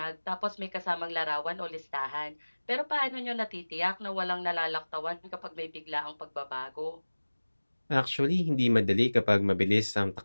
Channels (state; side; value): inverted; both; correlation -1.00